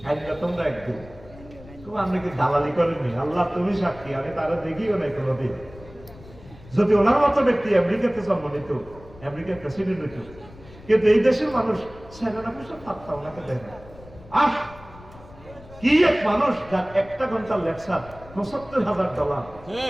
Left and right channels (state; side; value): noise; left; rumble, 20 dB below the sound